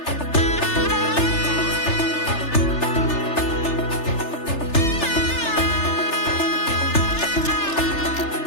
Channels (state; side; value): late; right; 3.3 ms